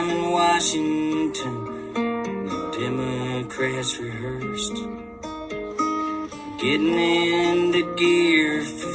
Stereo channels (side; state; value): both; identical; correlation 1.00